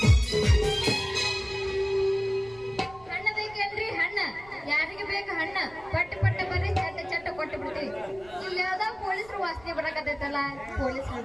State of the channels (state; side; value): noise; right; rumble, 23 dB below the sound